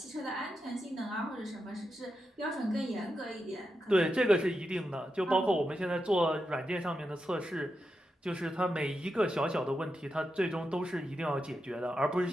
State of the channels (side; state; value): both; normal; correlation 0.87